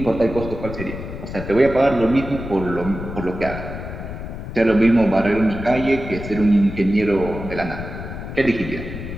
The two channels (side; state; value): left; noise; rumble, 9 dB below the sound